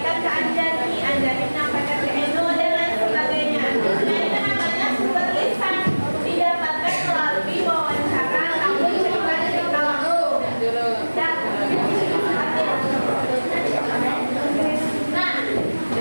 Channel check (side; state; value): both; inverted; correlation -1.00